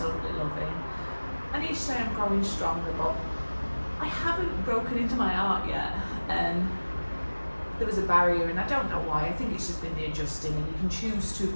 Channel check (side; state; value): both; inverted; correlation -1.00